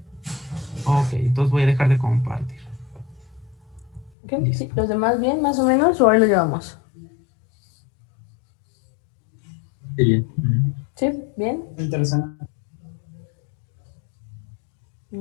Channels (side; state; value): right; drops out; at 4.1 s